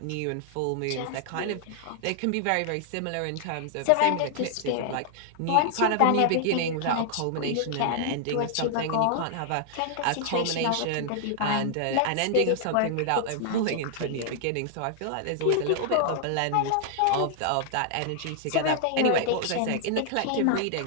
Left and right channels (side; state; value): both; different; correlation 0.00